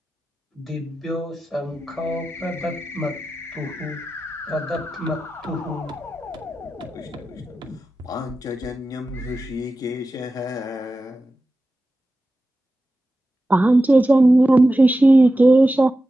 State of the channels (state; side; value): normal; both; correlation 0.93